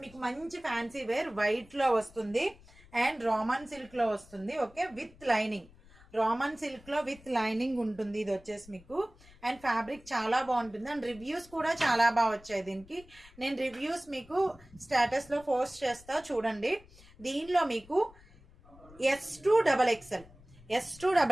మీకు మంచి ఫ్యాన్సీ వేర్ వైట్ లో వస్తుంది అండ్ రామన్ సిల్క్ లో వస్తుంది. Okay, with lining, Roman silk లో విత్ లైనింగ్ ఉంటుంది. ఇది వచ్చేసి మీకు అండ్ ఫ్యాబ్రిక్ చాలా బాగుంటుంది అండ్ రివ్యూస్ కూడా చాలా బాగా వచ్చాయి దీనికి. నేను రివ్యూస్ మీకు స్టేటస్ లో పోస్ట్ చేస్తా చూడండి. దీనిలో మీకు S2XXL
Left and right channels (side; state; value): left; noise; rumble, 24 dB below the sound